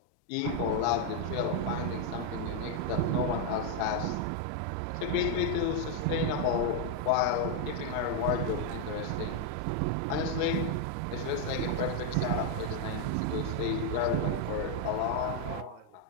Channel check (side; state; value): both; different; correlation 0.00